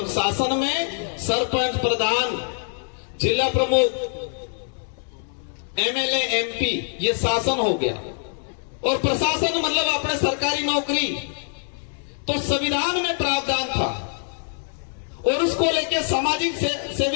शासन में सरपंच, प्रधान, जिला प्रमुख, एमएलए, एमपी ये शासन हो गया और प्रशासन मतलब अपने सरकारी नौकरी। तो संविधान में प्रावधान था और उसको लेके सामाजिक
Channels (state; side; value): silent; right; 63 dB below the other